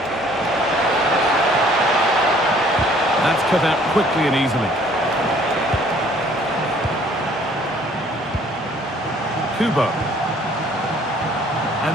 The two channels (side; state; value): both; normal; correlation 0.58